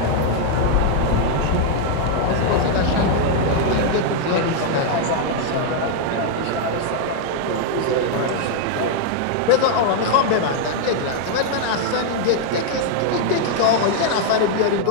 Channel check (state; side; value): different; both; correlation 0.00